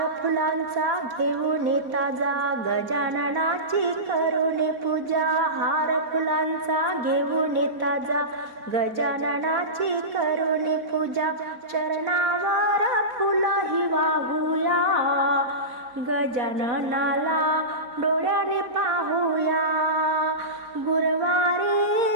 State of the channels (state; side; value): late; left; 4.2 ms